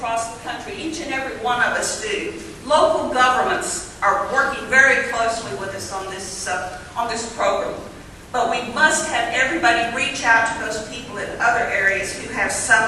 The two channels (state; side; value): identical; both; correlation 1.00